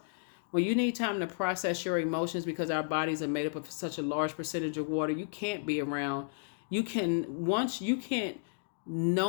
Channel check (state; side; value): silent; right; digital silence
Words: When you need time to process your emotions, because our bodies are made up of such a large percentage of water, you can't be around. You can't